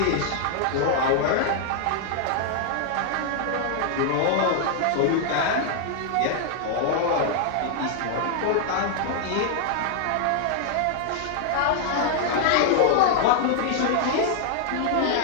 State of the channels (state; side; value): different; both; correlation 0.00